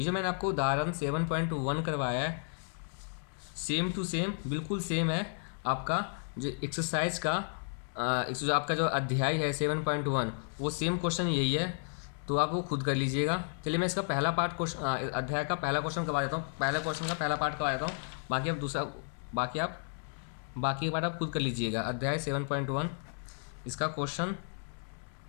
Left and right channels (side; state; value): right; silent; digital silence